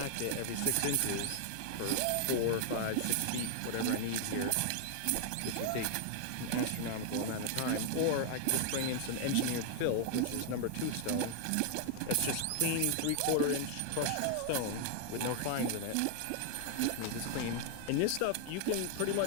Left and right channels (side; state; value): both; different; correlation 0.00